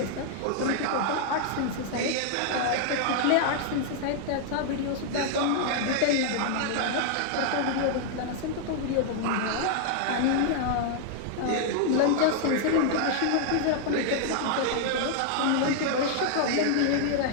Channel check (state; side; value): different; both; correlation -0.01